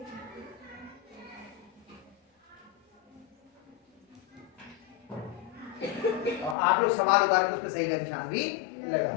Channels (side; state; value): right; drops out; at 6.6 s